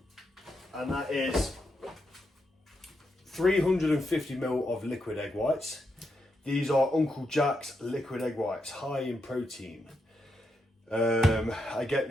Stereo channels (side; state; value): both; normal; correlation 0.83